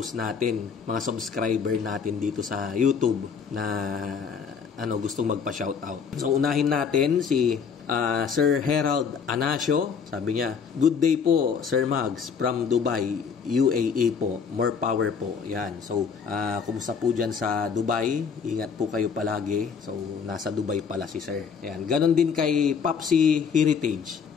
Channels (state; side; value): quieter; right; 6.3 dB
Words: natin, mga subscriber natin dito sa YouTube na gustong magpa-shoutout. So, unahin natin si Sir Herald Anasio. Sabi niya, good day po, Sir Mugs, from Dubai, UAE po. More power po. Yan. So, kumusta po dyan sa Dubai? Ingat po kayo palagi. So, nasa Dubai pala si Sir. Yan. Ganon din kay Popsi Heritage